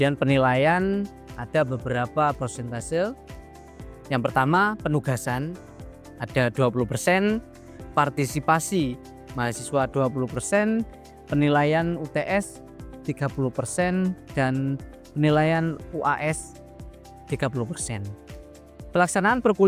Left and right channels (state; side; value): identical; both; correlation 1.00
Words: penilaian ada beberapa persentase. Yang pertama penugasan ada 20%, partisipasi mahasiswa 20%, penilaian UTS 30% dan penilaian UAS 30%. Pelaksanaan